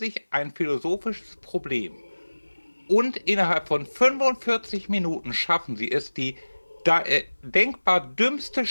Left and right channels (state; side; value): inverted; both; correlation -1.00